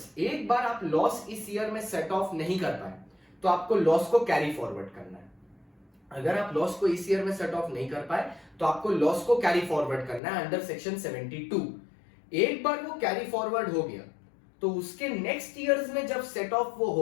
एक बार आप लॉस इस ईयर में सेट ऑफ नहीं कर पाए तो आपको लॉस को कैरी फॉरवर्ड करना है। अगर आप लॉस को इस ईयर में सेट ऑफ नहीं कर पाए तो आपको लॉस को कैरी फॉरवर्ड करना है अंडर सेक्शन 72। एक बार वो कैरी फॉरवर्ड हो गया तो उसके नेक्स्ट ईयर्स में जब सेट ऑफ वो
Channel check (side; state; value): right; drops out; at 10.2 s